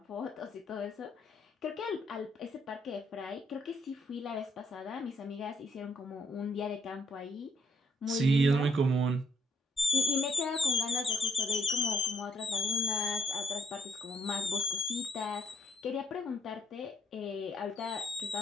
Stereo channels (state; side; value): normal; both; correlation 0.69